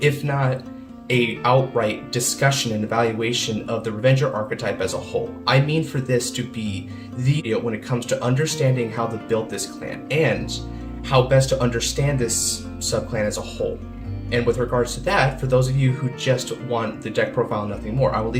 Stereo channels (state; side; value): identical; both; correlation 1.00